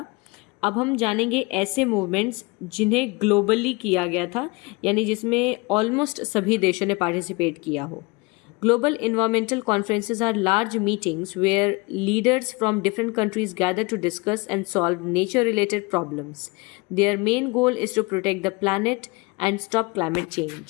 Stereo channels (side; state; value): right; quieter; 26.1 dB